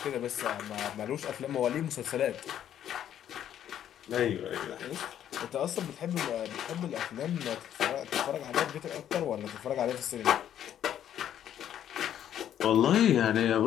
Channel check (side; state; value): right; quieter; 10.4 dB